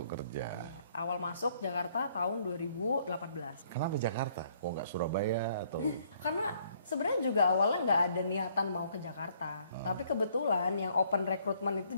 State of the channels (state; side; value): inverted; both; correlation -0.65